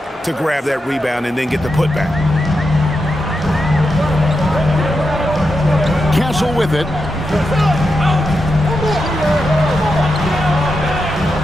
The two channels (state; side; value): normal; both; correlation 0.87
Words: to grab that rebound and then get the putback. Castle with it.